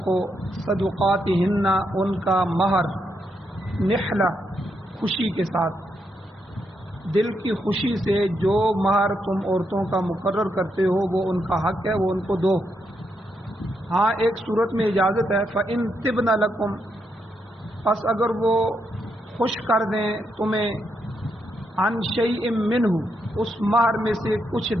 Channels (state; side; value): normal; both; correlation 0.81